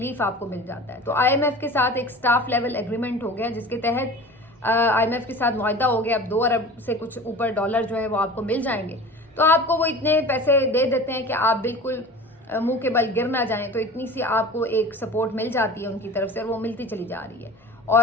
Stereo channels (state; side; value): normal; both; correlation 0.38